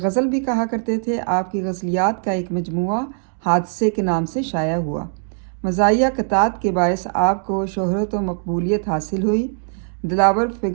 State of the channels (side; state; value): left; silent; 65 dB below the other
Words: भी कहा करते थे। आपकी गज़लियात का एक मजमुआ हादसे के नाम से शाया हुआ। मज़ाहिया क़तात के बायस आपको शोहरत व मकबूलियत हासिल हुई। दिलावर